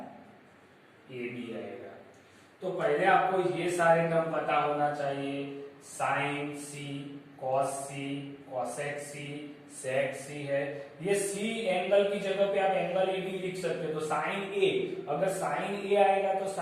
ए बी आएगा। तो पहले आपको ये सारे टर्म पता होना चाहिए, साइन सी, कॉस सी, कॉसेक सी, सेक सी है। ये सी एंगल की जगह पे आप एंगल ए भी लिख सकते हो। तो साइन ए, अगर साइन ए आएगा तो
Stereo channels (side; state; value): both; identical; correlation 1.00